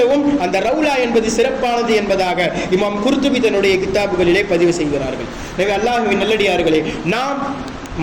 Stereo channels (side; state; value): both; identical; correlation 1.00